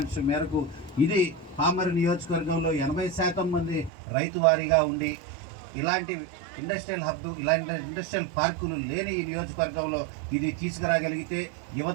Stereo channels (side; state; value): left; drops out; at 3.9 s